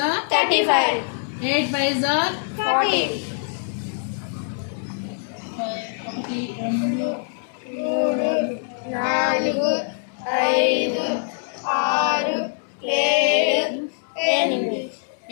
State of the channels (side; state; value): right; silent; digital silence